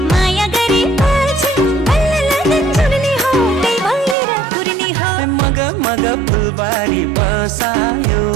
माया गरेपछि बल्ल लगन जुर्नी हो त्यही भएर कुर्नी हो। मगा मगा फुलबारी बसायो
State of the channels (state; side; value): drops out; left; at 4.2 s